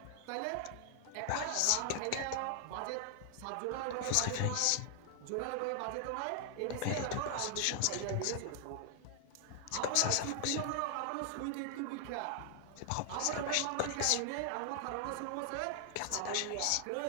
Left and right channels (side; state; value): both; different; correlation 0.00